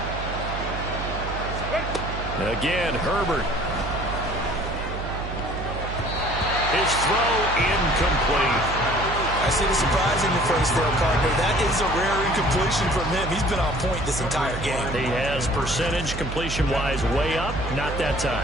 Again, Herbert. His throw incomplete. I see the surprise in your face there, partner. That is a rare incompletion from him. He's been on point this entire game. He has percentage completion-wise way up. Not that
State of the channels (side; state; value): right; noise; hum, 6 dB below the sound